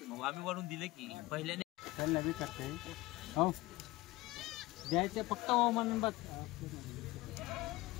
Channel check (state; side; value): quieter; right; 19.9 dB